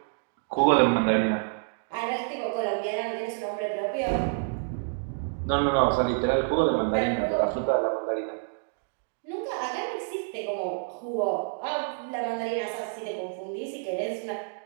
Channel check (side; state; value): left; silent; digital silence